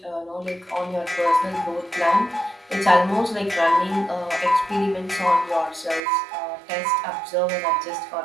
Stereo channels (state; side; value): drops out; left; at 6.0 s